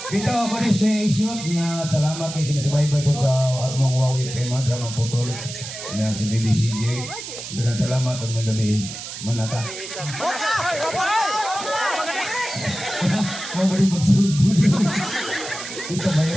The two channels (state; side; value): noise; right; hiss, 9 dB below the sound